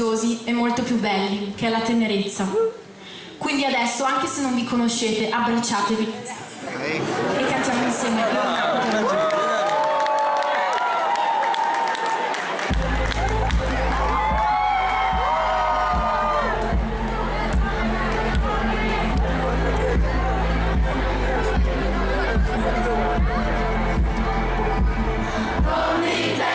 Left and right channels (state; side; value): identical; both; correlation 1.00